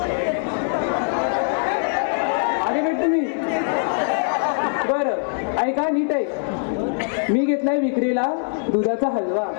आगे नीट तुम्ही. बरं ऐका नीट ऐक. मी घेतलाय विक्रीला दुधाचा हलवा.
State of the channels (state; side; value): silent; right; digital silence